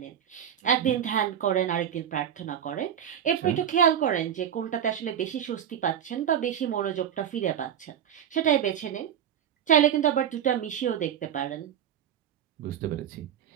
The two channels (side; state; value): left; quieter; 9.3 dB